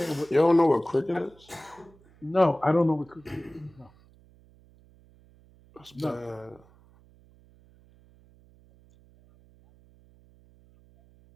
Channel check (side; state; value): right; noise; hum, 28 dB below the sound